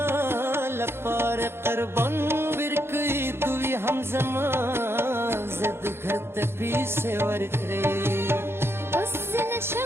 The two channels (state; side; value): late; left; 0.12 ms